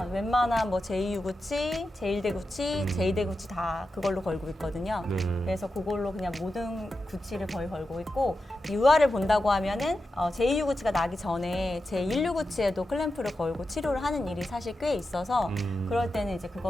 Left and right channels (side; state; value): both; normal; correlation 0.90